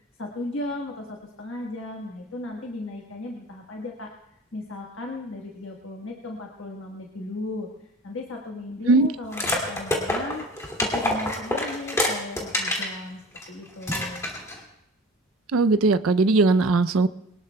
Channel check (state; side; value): normal; both; correlation 0.41